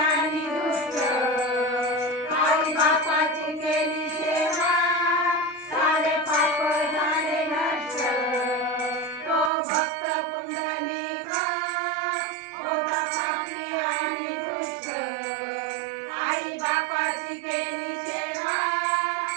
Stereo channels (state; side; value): drops out; left; at 9.5 s